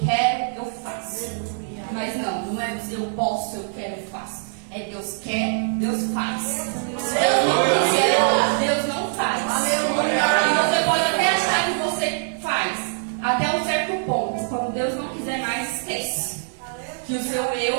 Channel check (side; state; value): left; silent; 63 dB below the other